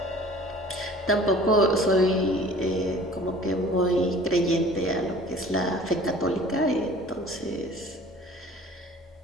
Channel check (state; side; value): normal; both; correlation 0.47